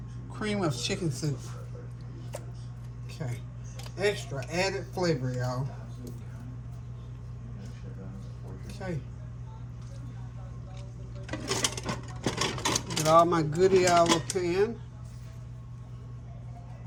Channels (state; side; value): identical; both; correlation 1.00